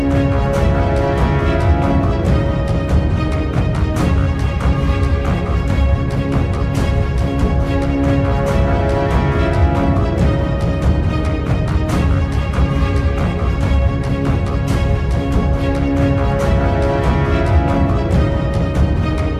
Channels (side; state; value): both; identical; correlation 1.00